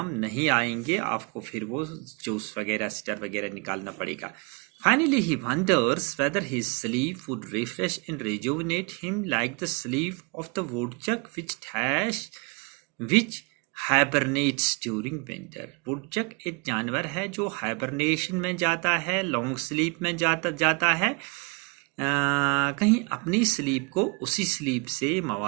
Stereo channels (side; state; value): left; quieter; 32.2 dB